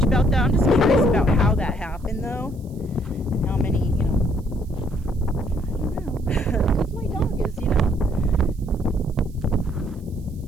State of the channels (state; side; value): noise; right; hiss, 30 dB below the sound